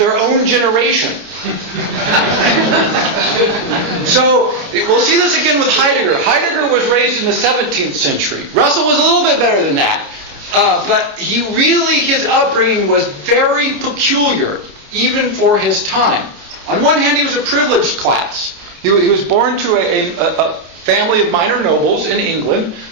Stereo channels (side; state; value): left; late; 29 ms